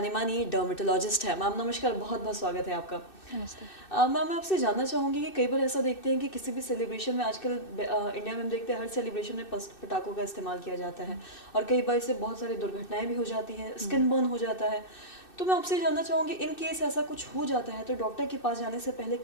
मानी डर्मेटोलॉजिस्ट है। मैम नमस्कार, बहुत बहुत स्वागत है आपका। नमस्ते। मैम, मैं आपसे जानना चाहूँगी कि कई बार ऐसा देखते हैं कि किसी भी सेलिब्रेशन में आजकल इंडिया में हम देखते हैं हर सेलिब्रेशन में पटाखों का इस्तेमाल किया जाता है और कई बार इससे बहुत सारी दुर्घटनाएं भी हो जाती हैं, स्किन बर्न हो जाता है। तो मैं आपसे जानना चाहूँगी, इन केस ऐसा कुछ हो जाता है तो डॉक्टर के पास जाने से पहले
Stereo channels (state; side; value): late; right; 2.6 ms